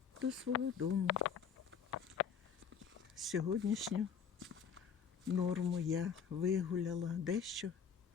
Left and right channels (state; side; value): quieter; right; 7.0 dB